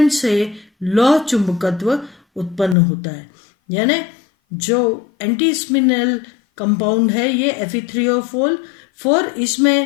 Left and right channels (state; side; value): drops out; right; at 2.8 s